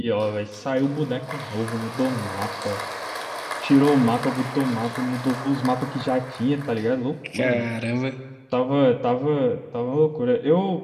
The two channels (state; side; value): identical; both; correlation 1.00